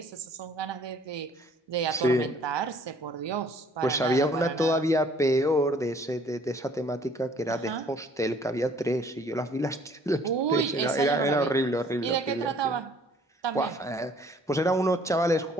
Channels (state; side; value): normal; both; correlation 0.57